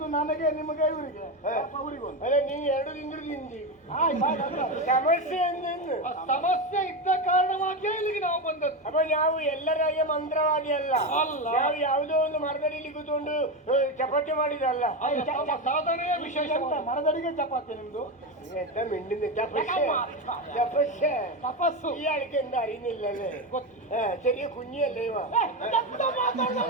ನನಗೆ ನಿಮಗೆ ಇವರಿಗೆ ಅದೇ ನೀವು 2 ತಿಂಗಳು ತಿಂದಿ ಸಮಸ್ಯೆ ಸಮಸ್ಯೆ ಇದ್ದ ಕಾರಣವಾಗಿ ಇಲ್ಲಿಗೆ ನಾವು ಬಂದದ್ದು ಅಪ್ಪ ನಾವು ಎಲ್ಲರಾಗೆ ಮಂತ್ರವಾದಿ ಅಲ್ಲ ನಾವು ಯಾವುದೋ ಒಂದು ಮರದಡಿಯಲ್ಲಿ ಕೂತ್ಕೊಂಡು ಚಪಾತಿ ಮಾಡಿದಲ್ಲ ಸಾಧನೆಯ ವಿಶೇಷ ಮರದಡಿಗೆ ಚಪಾತಿ ನಿಮ್ದು ಮಿಂಡಿನ ತಪಸ್ಸೆ ತಪಸ್ಸು ಈ ಅಡಿಕೆಯಿಂದ ಅರಿನಿಲ್ಲವೇ ಸರಿಯ ಕುഞ്ഞിಯಲ್ಲ ಇವ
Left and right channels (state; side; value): normal; both; correlation 0.14